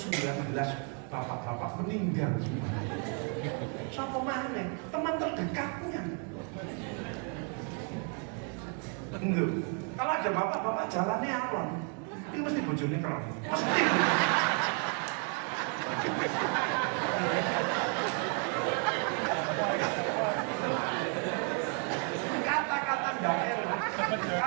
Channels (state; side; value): quieter; left; 39.6 dB